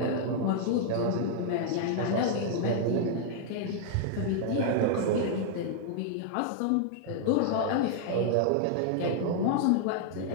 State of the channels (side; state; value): both; different; correlation -0.01